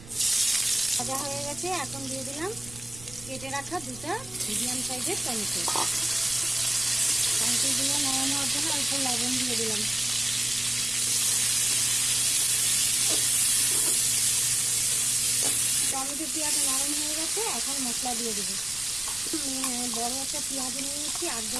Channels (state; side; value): noise; right; rumble, 18 dB below the sound